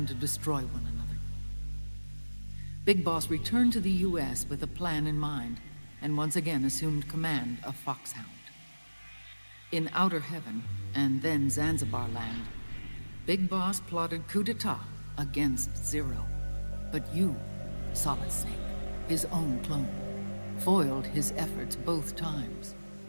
to destroy one another. Big Boss returned to the US with a plan in mind, and once again assumed command of Foxhound. In Outer Heaven, and then Zanzibar Land, Big Boss plotted coup d'etat against Zero. But you, Solid Snake, his own clone, foiled his efforts both times.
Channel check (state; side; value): inverted; both; correlation -1.00